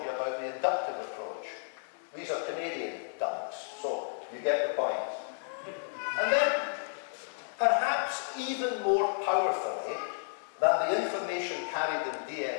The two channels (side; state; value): right; silent; digital silence